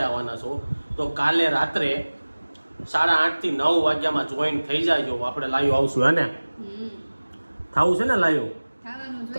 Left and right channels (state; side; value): inverted; both; correlation -1.00